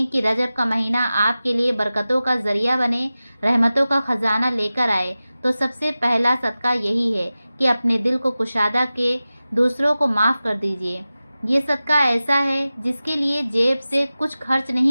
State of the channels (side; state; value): both; inverted; correlation -0.96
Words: کہ رجب کا مہینہ آپ کے لیے برکتوں کا ذریعہ بنے، رحمتوں کا خزانہ لے کر آئے، تو سب سے پہلا صدقہ یہی ہے کہ اپنے دل کو کشادہ کے دوسروں کو معاف کر دیجیے۔ یہ صدقہ ایسا ہے جس کے لیے جیب سے کچھ خرچ